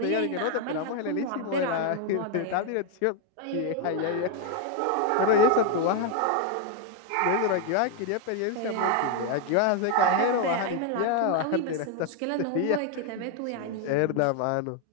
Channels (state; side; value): different; both; correlation 0.01